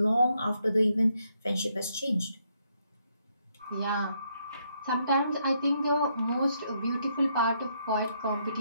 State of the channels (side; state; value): both; inverted; correlation -0.75